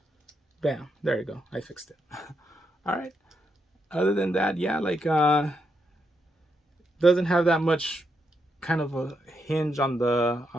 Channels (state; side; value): normal; both; correlation 0.81